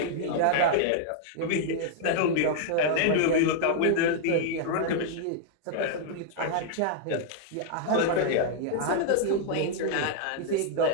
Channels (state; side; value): different; both; correlation -0.01